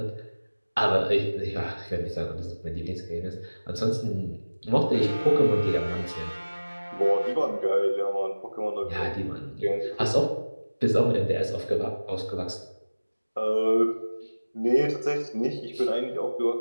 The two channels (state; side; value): inverted; both; correlation -1.00